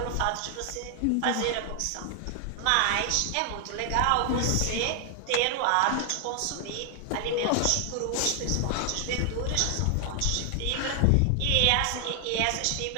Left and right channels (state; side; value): different; both; correlation 0.00